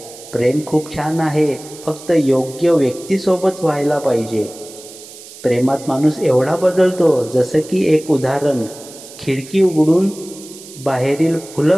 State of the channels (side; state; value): right; noise; hiss, 17 dB below the sound